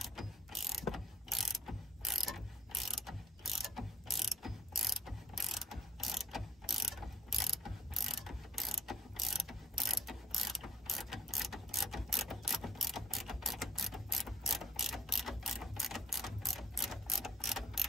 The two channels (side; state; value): both; normal; correlation 0.56